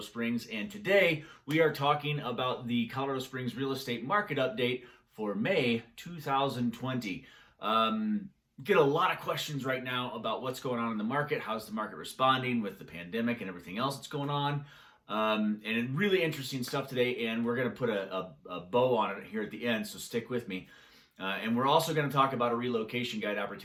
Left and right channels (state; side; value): identical; both; correlation 1.00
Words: and today we are talking about the Colorado Springs real estate market update for May 2020. Get a lot of questions right now about what's going on in the market. How's the market responding with the pandemic and everything else that's going on? And really interesting stuff today, and we're going to put a bow on it here at the end, so stick with me. And we're also going to talk about a relocation guide